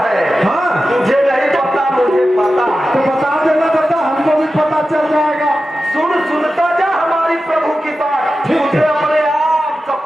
हाँ तुझे नहीं पता, मुझे पता है। तो बता देना दादा, हमको भी पता चल जाएगा। सुनता जा हमारी प्रभु की बात, तुझे अपने आप सब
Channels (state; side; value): normal; both; correlation 0.93